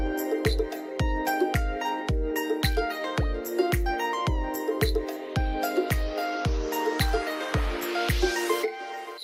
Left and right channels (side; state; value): both; identical; correlation 1.00